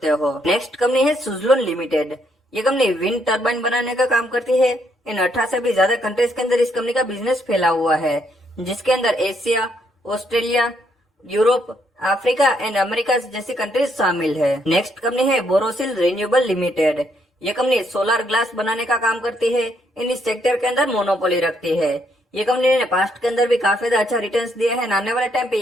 हो। नेक्स्ट कंपनी है सुजलोन लिमिटेड। ये कंपनी विंड टर्बाइन बनाने का काम करती है। इन 18 से भी ज्यादा कंट्रीज के अंदर इस कंपनी का बिजनेस फैला हुआ है, जिसके अंदर Asia, Australia, Europe, Africa and America जैसी कंट्रीज शामिल है। नेक्स्ट कंपनी है बोरोसिल रिन्यूएबल लिमिटेड। ये कंपनी सोलर ग्लास बनाने का काम करती है। इन इस सेक्टर के अंदर मोनोपोली रखती है। ये कंपनी ने पास्ट के अंदर भी काफी ज्यादा अच्छा रिटर्न्स दिया है। आने वाले टाइम पे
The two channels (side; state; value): both; normal; correlation 0.73